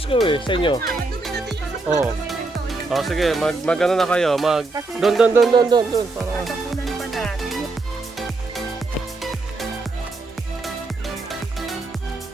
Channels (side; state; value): left; quieter; 3.3 dB